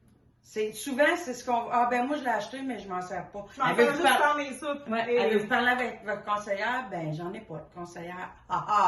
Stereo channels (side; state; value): both; identical; correlation 1.00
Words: Souvent, c'est ce qu'on... moi, je l'ai acheté, mais je m'en sers pas. Elle veut juste faire mes soupes. Elle veut vous parler avec votre conseillère? Ben, j'en ai pas de conseillère.